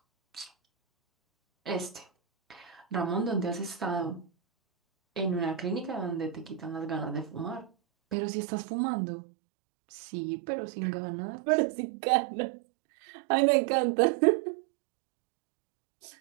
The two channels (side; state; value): left; drops out; at 8.2 s